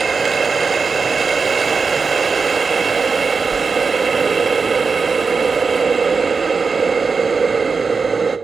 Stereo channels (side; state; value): left; quieter; 4.9 dB